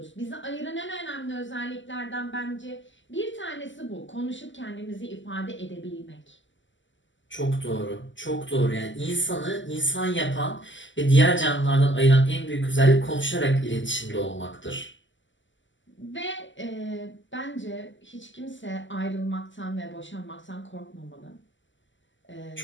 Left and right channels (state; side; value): late; right; 0.54 ms